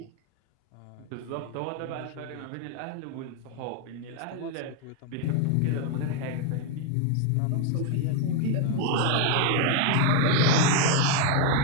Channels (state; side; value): different; both; correlation 0.01